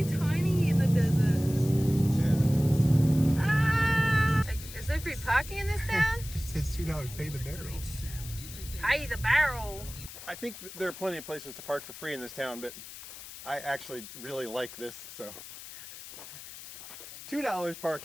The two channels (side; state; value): left; noise; hiss, 14 dB below the sound